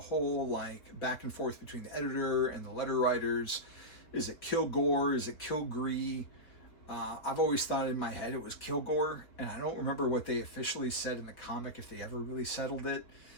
whole back and forth between the editor and the letter writers. Is it Kilgore? Is it Kilgree? I've always thought in my head it was Kilgore, and I don't remember what they officially said in the comic, if they ever really settled it.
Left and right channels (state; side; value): late; right; 4.1 ms